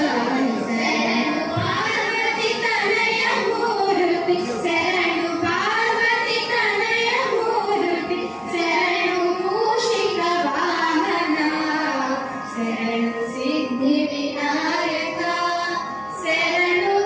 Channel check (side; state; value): both; identical; correlation 1.00